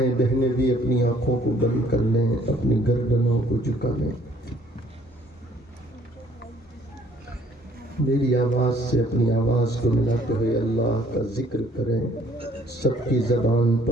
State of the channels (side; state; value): both; normal; correlation 0.61